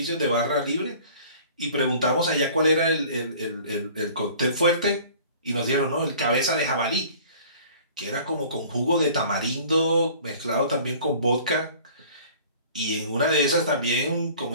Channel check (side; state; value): both; inverted; correlation -0.48